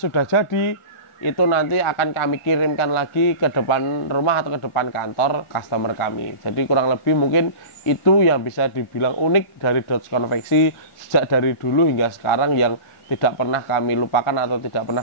jadi, itu nanti akan kami kirimkan lagi ke depan rumah atau ke depan kantor customer kami. Jadi kurang lebih mungkin itu yang bisa dibilang unik dari Dodge Konveksi sejak dari dulu hingga sekarang, yang tidak pernah kami lupakan atau tidak pernah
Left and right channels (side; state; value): right; late; 1.4 ms